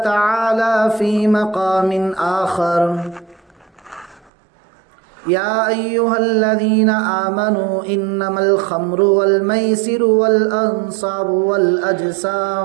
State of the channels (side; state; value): left; drops out; at 4.3 s